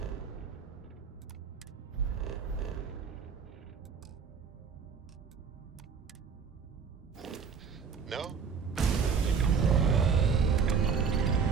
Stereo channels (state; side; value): quieter; left; 6.1 dB